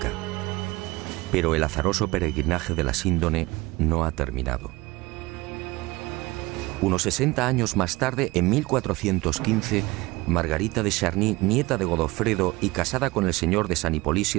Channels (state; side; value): quieter; left; 21.5 dB